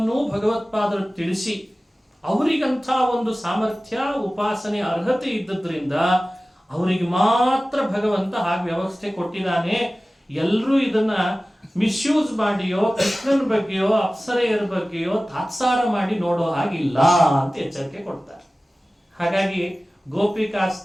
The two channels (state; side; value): normal; both; correlation 0.97